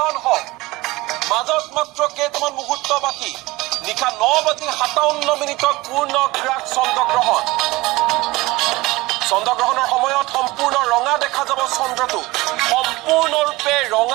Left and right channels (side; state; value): left; quieter; 20.7 dB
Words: হওক, মাজত মাত্ৰ কেইটামান মুহূৰ্ত বাকী। নিশা 9:57 পূৰ্ণ গ্ৰাস চন্দ্ৰগ্ৰহণ। চন্দ্ৰগ্ৰহণৰ সময়ত সম্পূৰ্ণ ৰঙা দেখা যাব চন্দ্ৰটো। সম্পূৰ্ণৰূপে